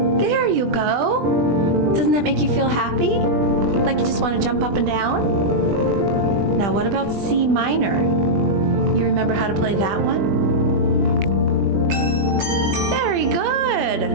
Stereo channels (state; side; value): late; left; 20 ms